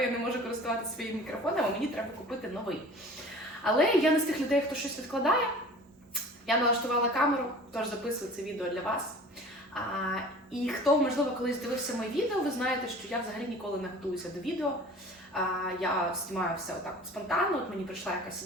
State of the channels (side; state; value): both; normal; correlation 0.43